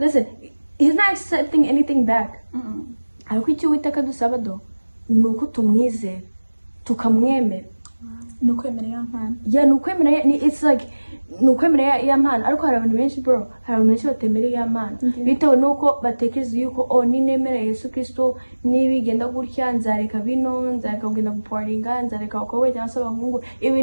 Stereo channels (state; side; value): inverted; both; correlation -1.00